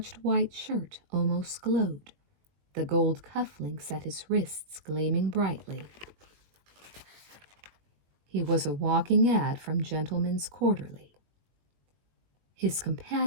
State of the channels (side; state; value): left; late; 20 ms